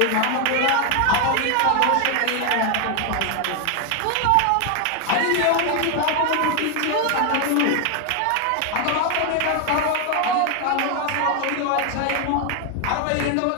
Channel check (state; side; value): different; both; correlation 0.01